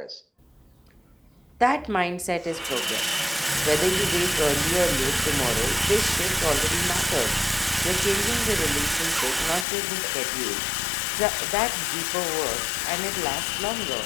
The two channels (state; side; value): drops out; right; at 9.7 s